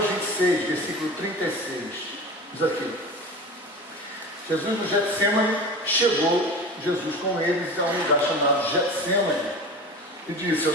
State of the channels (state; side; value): normal; both; correlation 0.33